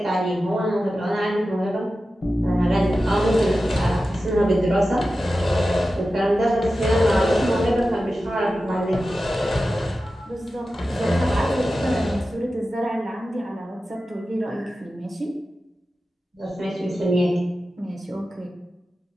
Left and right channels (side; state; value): both; normal; correlation 0.93